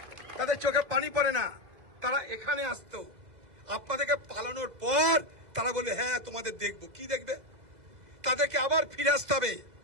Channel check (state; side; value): late; left; 2.0 ms